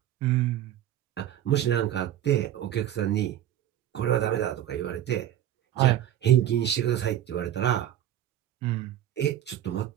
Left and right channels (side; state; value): left; quieter; 11.8 dB